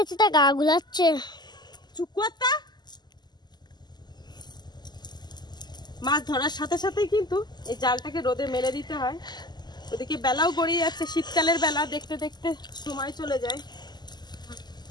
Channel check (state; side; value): late; right; 0.21 ms